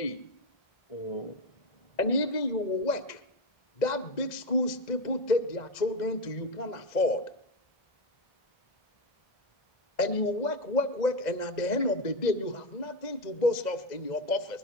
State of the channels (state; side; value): late; right; 2.0 ms